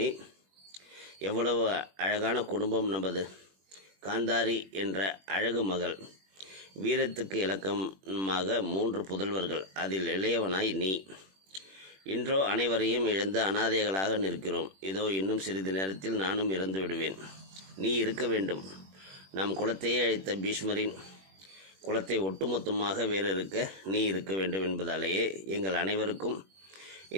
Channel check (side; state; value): left; late; 21 ms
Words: எவ்வளவு அழகான குடும்பம் நமது. காந்தாரி என்ற அழகு மகள், வீரத்துக்கு இலக்கமாக 3 புதல்வர்கள், அதில் இளையவனாய் நீ. இன்றோ அனைவரையும் இழந்து அனாதைகளாக நிற்கிறோம். இதோ இன்னும் சிறிது நேரத்தில் நானும் இறந்து விடுவேன். நீ இருக்க வேண்டும். நம் குலத்தையே அழைத்த பீஷ்மரின் குலத்தை ஒட்டுமொத்தமாக வேறிருக்க நீ இருக்க வேண்டும் என்பதாலேயே எங்கள் அனைவருக்கும்